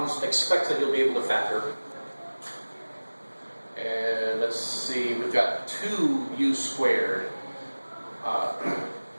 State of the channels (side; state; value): both; inverted; correlation -1.00